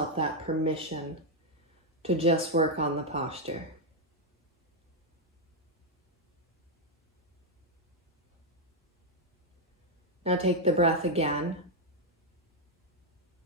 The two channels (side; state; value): both; normal; correlation 0.00